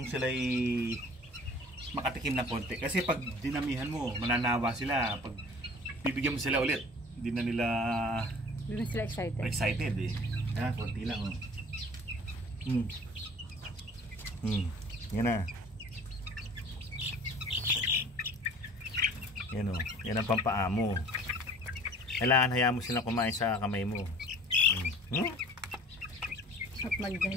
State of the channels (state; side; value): normal; both; correlation 0.47